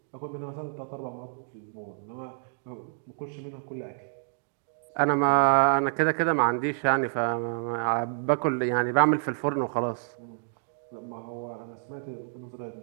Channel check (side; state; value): left; silent; digital silence